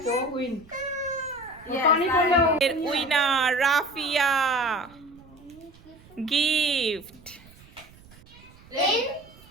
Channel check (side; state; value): right; noise; rumble, 24 dB below the sound